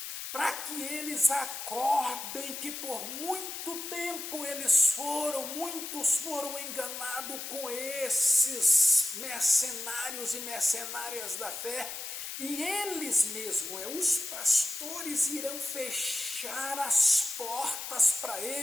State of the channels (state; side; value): noise; left; hiss, 7 dB below the sound